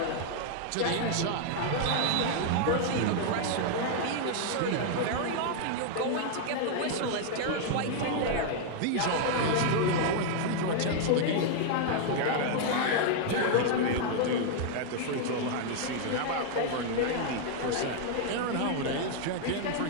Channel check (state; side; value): different; both; correlation 0.00